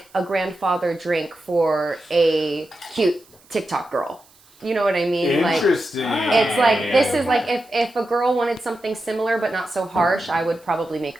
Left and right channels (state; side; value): noise; right; hiss, 29 dB below the sound